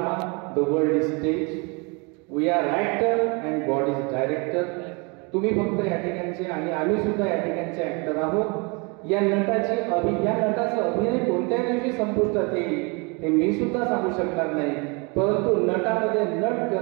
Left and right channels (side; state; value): left; quieter; 30.8 dB